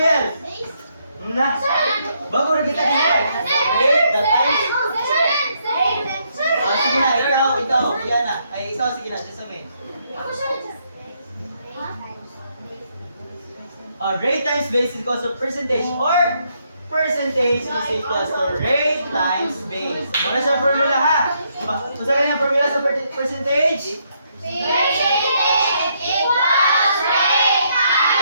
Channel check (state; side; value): inverted; both; correlation -0.74